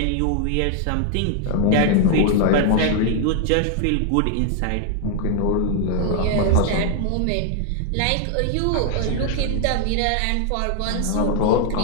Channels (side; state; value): both; different; correlation 0.00